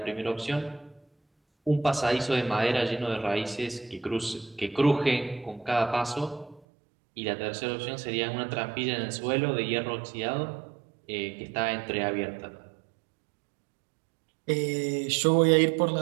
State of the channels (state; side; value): drops out; left; at 6.6 s